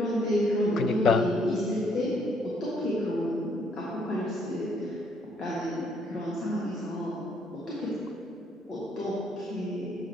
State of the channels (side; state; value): both; normal; correlation 0.68